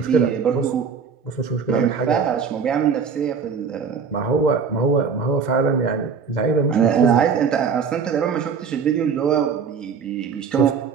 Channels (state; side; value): quieter; left; 6.0 dB